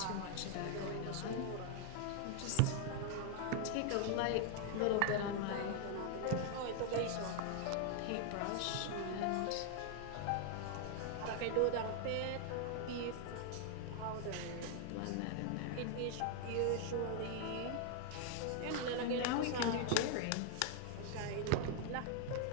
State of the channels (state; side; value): different; both; correlation 0.00